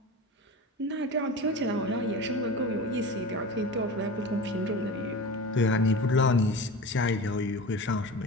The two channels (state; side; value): normal; both; correlation 0.31